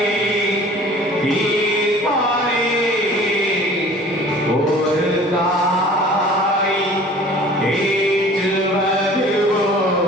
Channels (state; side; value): normal; both; correlation 0.47